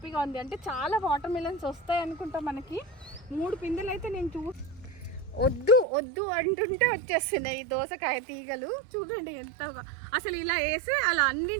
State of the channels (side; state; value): left; drops out; at 5.9 s